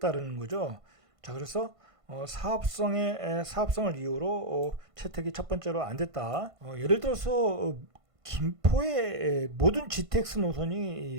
거죠. 자, 그래서 사업성을 이유로 채택이 첫 번째로 안 됐다. 예를 들어서 김포의 모든 GTX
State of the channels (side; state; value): left; late; 1.5 ms